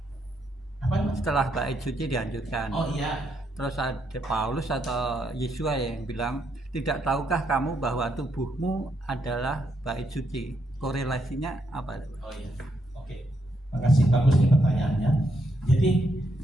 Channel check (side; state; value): both; normal; correlation 0.77